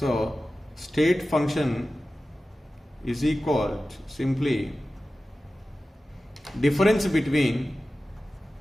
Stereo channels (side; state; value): both; normal; correlation 0.95